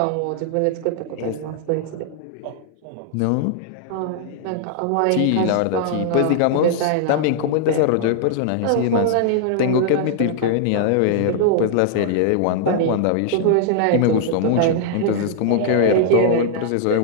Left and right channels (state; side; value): different; both; correlation -0.01